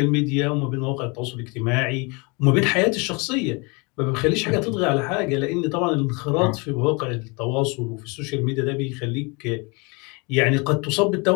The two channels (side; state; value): right; quieter; 29.6 dB